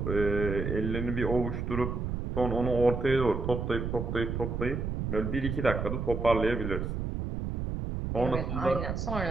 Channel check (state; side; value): noise; right; rumble, 3 dB below the sound